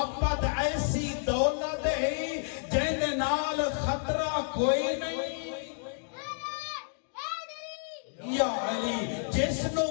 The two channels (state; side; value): silent; right; digital silence